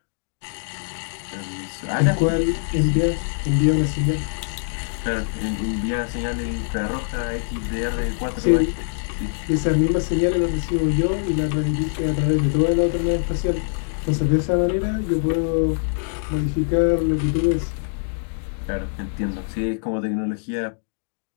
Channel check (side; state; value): right; silent; digital silence